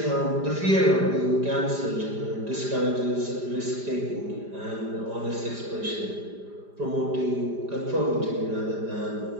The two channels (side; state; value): left; late; 5.0 ms